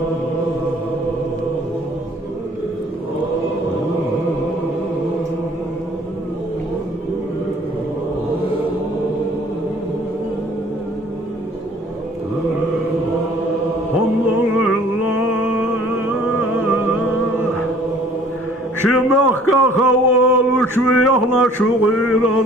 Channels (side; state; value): both; normal; correlation 0.54